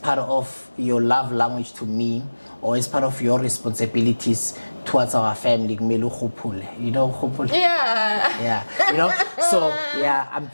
of your love language to me, or as part of your responsibilities towards our family. You know, you know. So I'm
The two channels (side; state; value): both; inverted; correlation -1.00